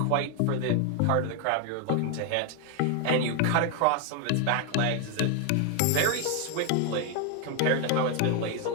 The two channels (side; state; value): both; different; correlation 0.01